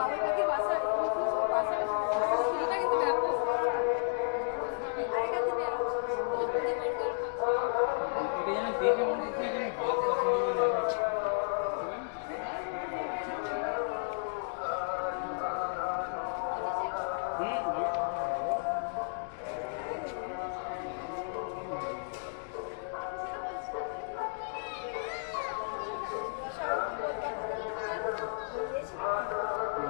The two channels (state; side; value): silent; right; digital silence